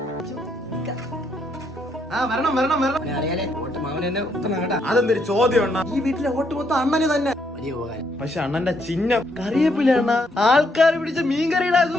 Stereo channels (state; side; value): normal; both; correlation 0.73